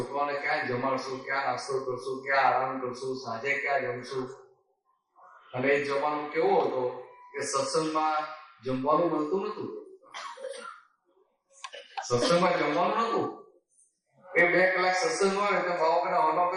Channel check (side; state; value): both; identical; correlation 1.00